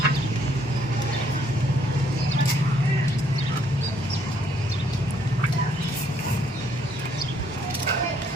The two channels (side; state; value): both; normal; correlation 0.68